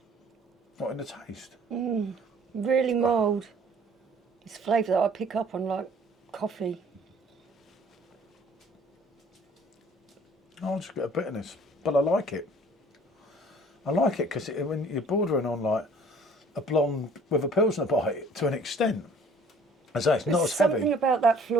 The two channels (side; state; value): both; normal; correlation 0.54